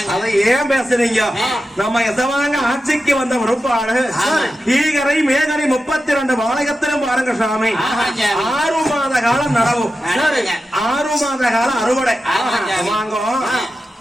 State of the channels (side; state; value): both; normal; correlation 0.91